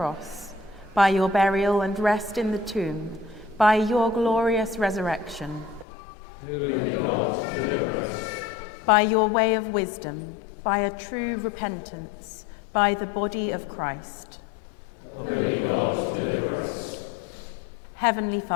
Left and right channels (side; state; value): right; drops out; at 5.9 s